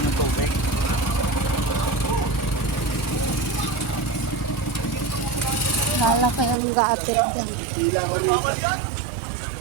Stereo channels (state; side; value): drops out; left; at 6.6 s